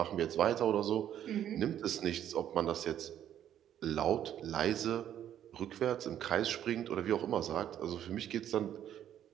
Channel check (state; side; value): quieter; left; 10.6 dB